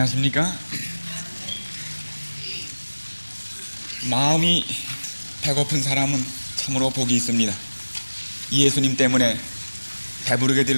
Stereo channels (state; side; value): inverted; both; correlation -1.00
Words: 마음이 배고픈 사람은 참으로 복이 있습니다. 이 예수님 때문에 배부르게